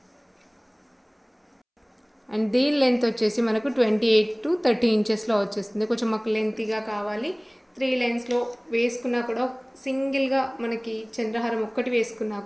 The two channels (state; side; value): identical; both; correlation 1.00